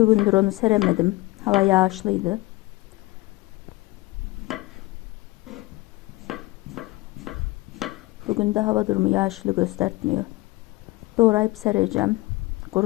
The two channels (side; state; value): right; quieter; 20.6 dB